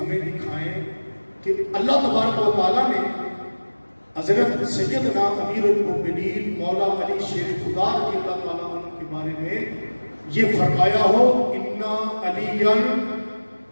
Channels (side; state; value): both; inverted; correlation -1.00